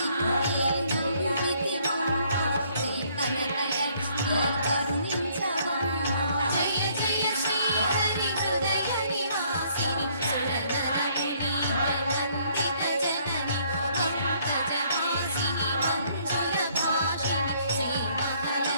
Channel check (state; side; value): inverted; both; correlation -0.65